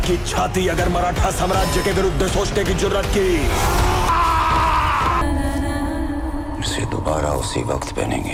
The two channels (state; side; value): identical; both; correlation 1.00